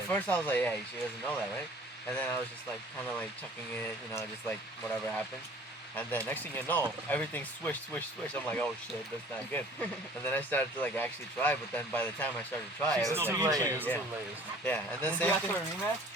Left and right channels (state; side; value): normal; both; correlation 0.49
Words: At first I was like, yeah, she doesn't know that, right? And then I was just like, kind of like chucking it, just like whatever happened. And then next thing you know, everything swish. I'm like, oh shit, that's not good. And then I started to like actually try, but then by the time I started to try, She's it was still like, beating you. yeah. And then Did same you ask thing. for a rematch?